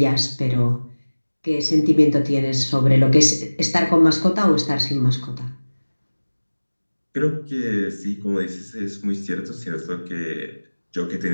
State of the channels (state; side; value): inverted; both; correlation -1.00